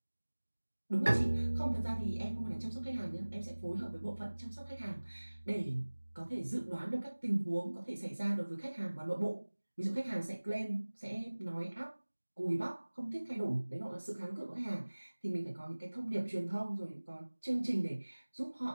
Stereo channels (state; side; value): inverted; both; correlation -1.00